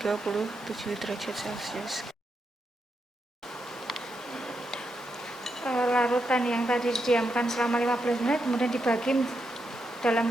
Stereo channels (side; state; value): both; normal; correlation 0.83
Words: derajat Celcius. Larutan yang tadi didiamkan selama 15 menit kemudian dibagi